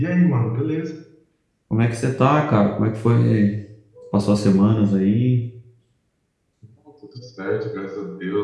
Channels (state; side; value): identical; both; correlation 1.00